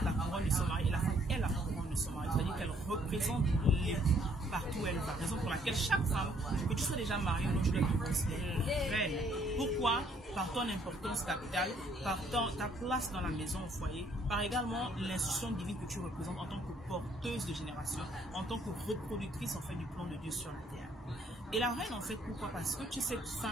la couronne de son mari et la femme est la couronne de son mari. C'est-à-dire qu'elle représente l'époux partout où elle va. Raison pour laquelle chaque femme, que tu sois déjà mariée ou non, tu dois te considérer reine. Pourquoi? Par ton importance capitale, par ta place dans la maison au foyer, par également l'institution divine que tu représentes en tant que porteuse de génération, en tant que reproductrice en fait du plan de Dieu sur la terre. Et la reine en fait, pourquoi? Parce que tu es cette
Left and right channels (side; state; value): both; normal; correlation 0.65